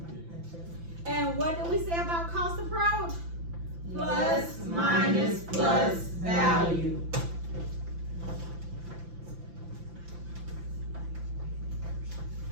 And what do we say about cost approach? Plus, minus, plus, value.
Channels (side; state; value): left; late; 5.9 ms